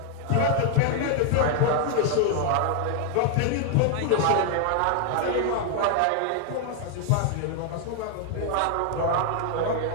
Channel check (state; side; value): different; both; correlation 0.00